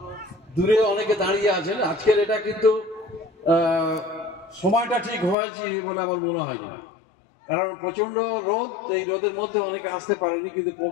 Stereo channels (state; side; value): drops out; right; at 5.4 s